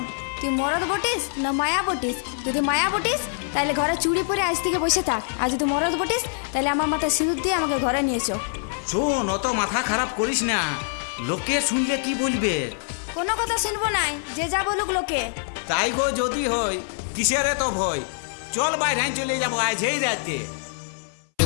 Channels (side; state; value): right; silent; 62 dB below the other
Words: তুই মরদ বটিস না মায়া বটিস? যদি মায়া বটিস তাহলে ঘরে চুড়ি পরে আজ থেকে বসে থাক, আর যদি মরদ বটিস তাহলে আমার মাথায় সিঁদুর দিয়ে আমাকে ঘরে নিয়েছো। শোন, অত মাথা খারাপ করিস না, লোকে শুনলে কি বলবে? কোনো কথা শুনবো নাই, যে যা বলুক লোকে। তাই গো যদি হয়, কিসের এত ভয়? চল বাইরে চলে যাবো আজই রাতে।